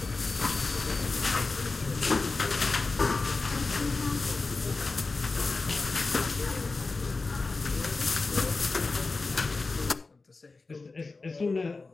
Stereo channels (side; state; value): right; quieter; 3.7 dB